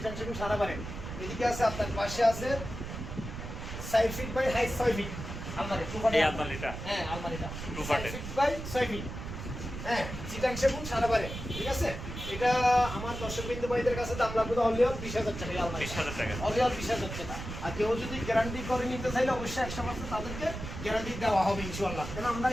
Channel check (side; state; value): right; noise; rumble, 8 dB below the sound